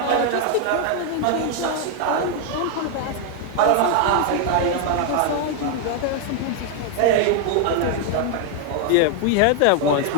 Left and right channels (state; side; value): different; both; correlation 0.00